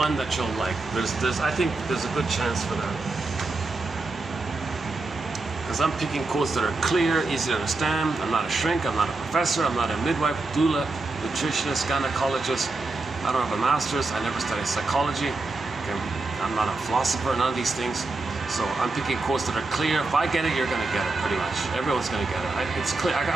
that you'll like. I think there's a good chance for that. Because I'm picking quotes that are clear, easy to understand. I'm not a shrink, I'm not a professor, I'm not a midwife, doula, nutritionist, gynecologist. I don't have a master's, I never studied psychology. Okay. I'm not a philosopher, none of these things. So I'm picking quotes that are clear. If I get it, you're gonna get it, pretty much. Everyone's gonna get it. It's clear.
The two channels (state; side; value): quieter; left; 3.4 dB